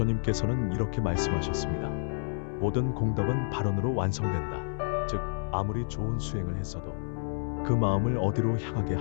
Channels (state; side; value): silent; right; 56 dB below the other